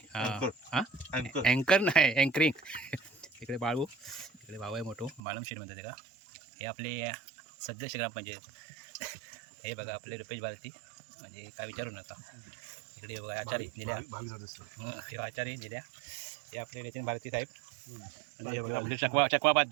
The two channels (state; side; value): drops out; left; at 5.2 s